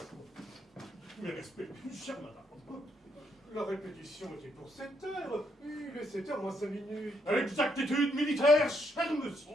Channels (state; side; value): normal; both; correlation 0.75